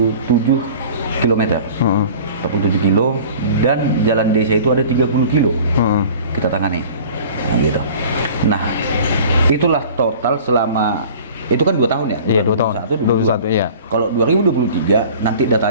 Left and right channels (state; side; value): inverted; both; correlation -0.44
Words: km. 47 kilo dan jalan desa itu ada 30 kilo. Kita tangani. Nah, gitu. Nah, itulah total selama itu kan 2 tahun ya? Iya, 2 tahun. 2021, iya. Kalau 2023 nanti